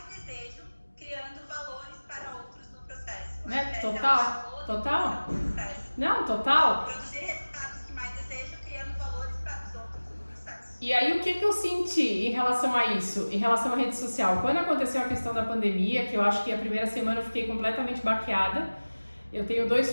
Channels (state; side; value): inverted; both; correlation -1.00